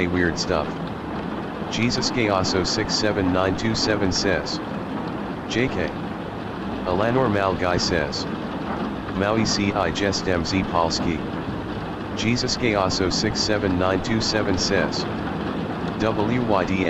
weird stuff. Jesus Chaoso 67927 says. JK. Alanor Malguy says. Maui ci jest mz Polski. Jesus Chaoso 67927 says.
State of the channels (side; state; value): both; identical; correlation 1.00